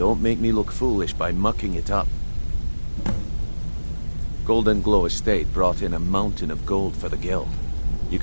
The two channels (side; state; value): both; inverted; correlation -1.00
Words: make me look foolish by mucking it up. Golden Glow Estate brought in a mountain of gold for the guild. You